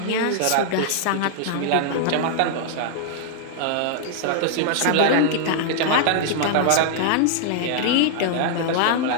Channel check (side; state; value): both; different; correlation -0.01